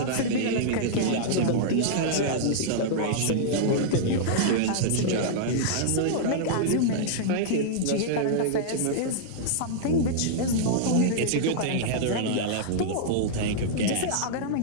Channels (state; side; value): different; both; correlation -0.02